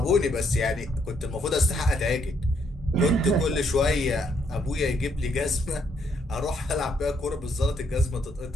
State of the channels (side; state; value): both; normal; correlation 0.72